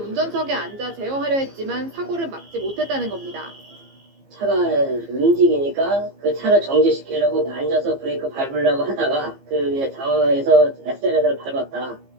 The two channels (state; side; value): late; left; 15 ms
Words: 앉아 제어하려 했지만 사고를 막지 못했다는 겁니다. 차가 움직이니까 그 차를 정지시키려고 앉아서 브레이크 밟으려고 하다가 그 당황해서 엑셀레터를 밟았다.